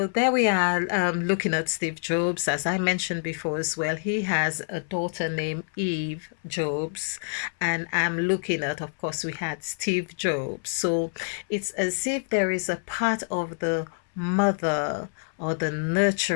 there we are, looking at Steve Jobs. As I mentioned before as well, he has a daughter named Eve Jobs, and I'm looking at, of course, we had Steve Jobs. So it's as if there is a part of the mother or the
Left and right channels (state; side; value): silent; right; 60 dB below the other